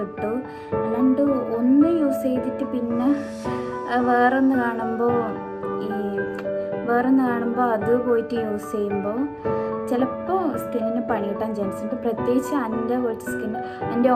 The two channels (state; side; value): identical; both; correlation 1.00